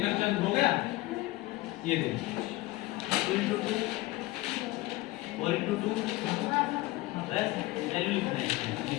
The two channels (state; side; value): quieter; right; 19.0 dB